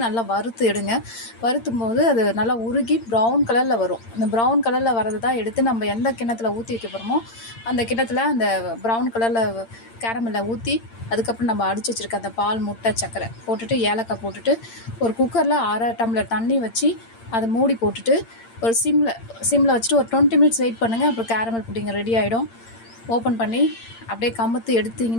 நல்லா வறுத்து எடுங்க. வறுத்தும் போது அது நல்லா உருகி ப்ரௌன் கலரில் வரும். அந்த ப்ரௌன் கலரில் வரது தான் எடுத்து நம்ம எந்த கிண்ணத்தில் ஊற்றி வைக்க போகிறோமோ அந்த கிண்ணத்தில் அந்த ப்ரௌன் கலரில் கேரமலில் ஊற்றி அதுக்கப்புறம் நம்ம அடித்து வச்சுருக்க அந்த பால், முட்டை, சர்க்கரை போட்டுட்டு ஏலக்காய் போட்டுட்டு ஒரு குக்கரில் 1/2 டம்ளர் தண்ணி வச்சு அதை மூடி போட்டுட்டு ஒரு சிம்மில் வச்சுட்டு ஒரு 20 மினிட்ஸ் வெயிட் பண்ணுங்கள். அப்புறம் கேரமல் புட்டிங் ரெடி ஆகிடும். ஓப்பன் பண்ணி அப்படியே கமுத்து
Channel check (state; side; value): late; right; 8.8 ms